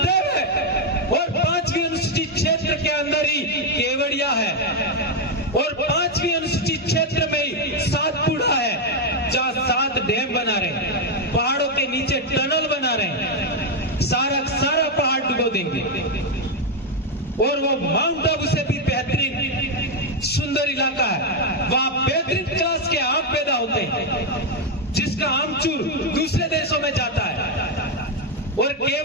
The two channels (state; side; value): normal; both; correlation 0.03